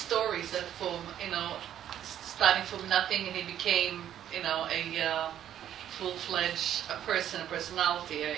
that from, starting from nothing and he became, a full-fledged personality,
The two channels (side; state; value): left; quieter; 10.7 dB